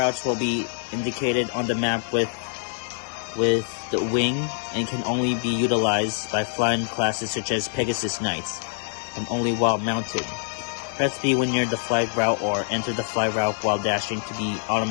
will be indicated on the map with the wing and can only be utilized by flying classes such as Pegasus Knights, and only while mounted. Press B when near the fly route or enter the fly route while dashing to be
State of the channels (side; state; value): right; silent; 62 dB below the other